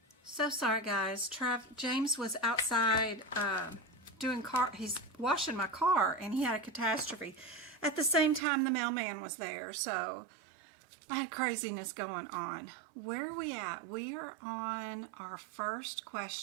So sorry, guys. James was outside he's washing my car, and he had a catastrophe. At the same time, the mailman was there, so I had craziness going on. Where are we at? We are on our first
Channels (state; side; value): drops out; left; at 8.4 s